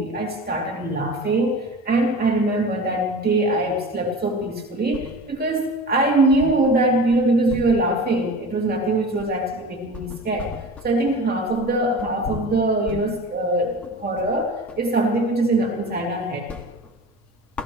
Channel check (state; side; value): normal; both; correlation 0.35